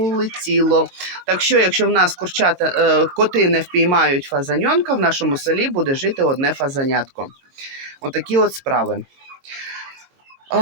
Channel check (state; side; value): late; left; 22 ms